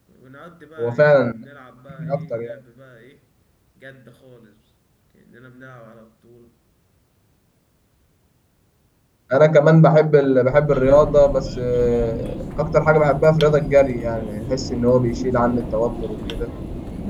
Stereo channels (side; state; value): both; identical; correlation 1.00